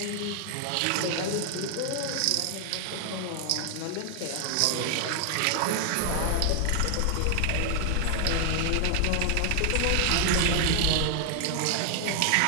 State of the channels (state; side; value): different; both; correlation 0.00